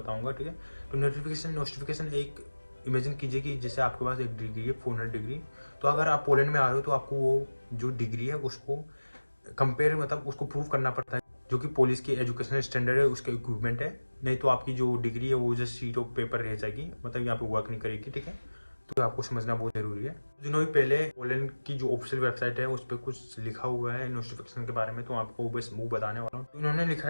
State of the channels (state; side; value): inverted; both; correlation -1.00